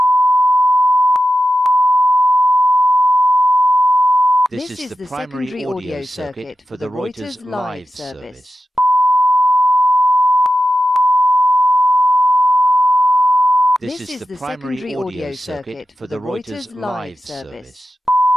This is the primary audio circuit for the Reuters live service. This is the primary audio circuit for the Reuters live service.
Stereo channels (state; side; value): normal; both; correlation 0.91